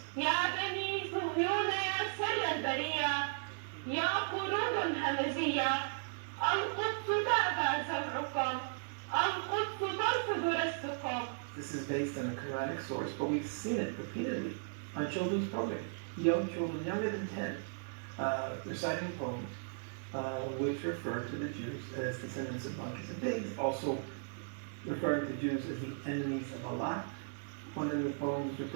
يا بني صهيون يا سر البرية يا قرود همزية القدس تأبى سمعكم القدس ترفض رزقكم. This is based on a Quranic source, but we've seen it repeatedly on children's programming. Young children, younger than 10, reciting poems which refer to the Jews as descendants of monkeys and pigs, also referring to Jews as the enemies of Allah. One of the poems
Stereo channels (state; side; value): silent; left; digital silence